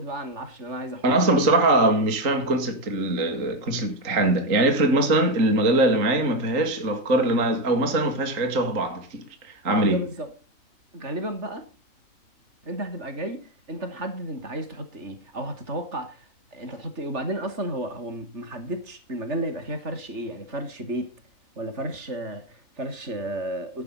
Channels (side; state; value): left; late; 3.8 ms